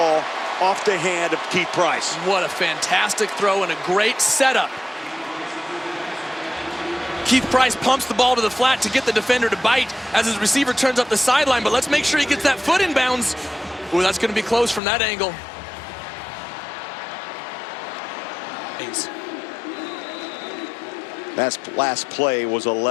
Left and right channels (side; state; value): right; drops out; at 14.8 s